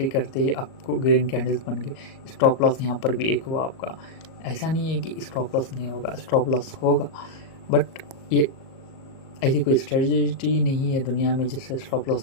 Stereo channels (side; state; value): right; late; 38 ms